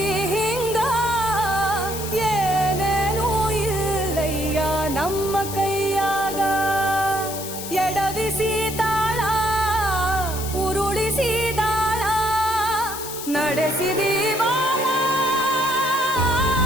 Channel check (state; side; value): noise; left; hiss, 9 dB below the sound